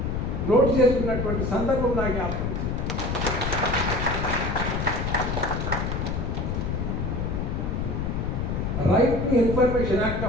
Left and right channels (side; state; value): left; noise; rumble, 1 dB below the sound